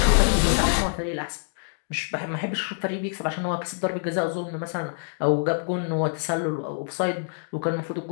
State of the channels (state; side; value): silent; right; digital silence